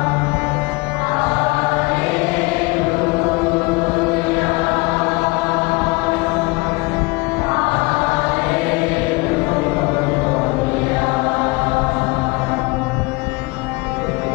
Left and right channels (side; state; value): right; quieter; 25.1 dB